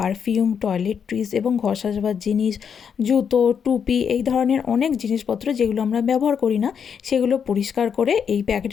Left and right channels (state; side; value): quieter; right; 7.2 dB